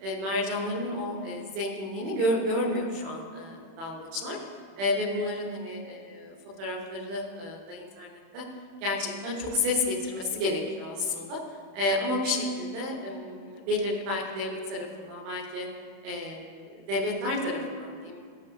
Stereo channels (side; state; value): left; late; 31 ms